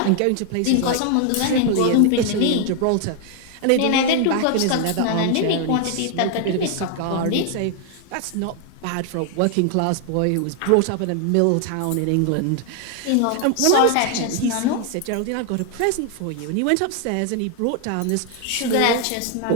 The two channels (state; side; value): different; both; correlation 0.00